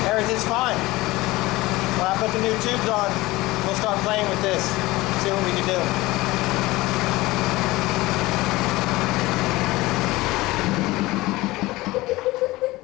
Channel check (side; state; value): right; quieter; 19.7 dB